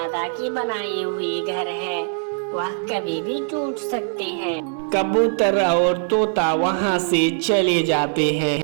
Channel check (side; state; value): left; silent; 62 dB below the other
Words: की बनाई हुई घर है, वह कभी भी टूट सकते हैं। कबूतर और तोता वहाँ से चले जाते हैं।